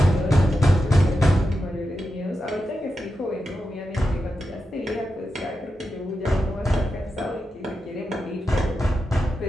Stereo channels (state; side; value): normal; both; correlation 0.89